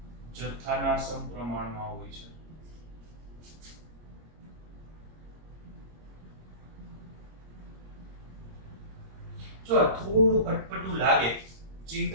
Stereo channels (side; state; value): left; late; 26 ms